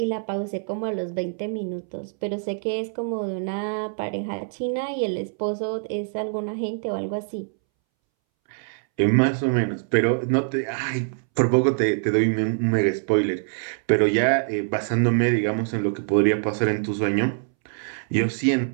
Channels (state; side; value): silent; left; 62 dB below the other